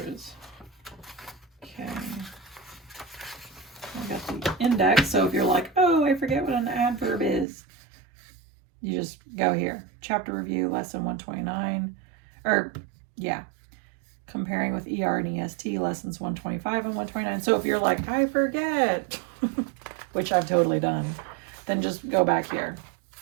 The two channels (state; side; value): drops out; left; at 7.5 s